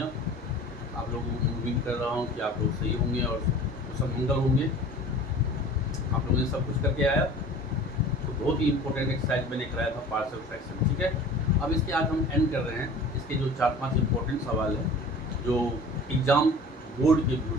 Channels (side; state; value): both; normal; correlation 0.42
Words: आप लोगों को उम्मीद कर रहा हूँ कि आप लोग सही होंगे और सब मंगल होंगे। आप लोगों ने सब कुछ करके आया तो बहुत ही इंपॉर्टेंट एक्सरसाइज मैंने कराया था, पार्शियल फ्रैक्शन। ठीक है, अब इसके आज हम एंड कर रहे हैं। इसके जो 4-5 इंपॉर्टेंट सवाल हैं जो एग्ज़ाम बोर्ड के व्यू